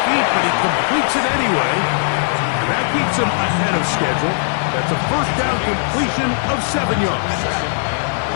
feet, but he completes it anyway. And that keeps him ahead of schedule. That's a first down completion of 7 yards.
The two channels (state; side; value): silent; right; digital silence